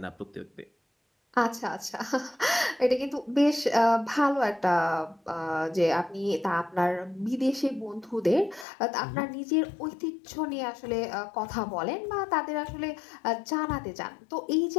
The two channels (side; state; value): right; drops out; at 8.7 s